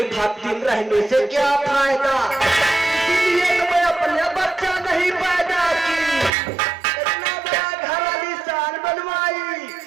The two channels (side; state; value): left; drops out; at 6.3 s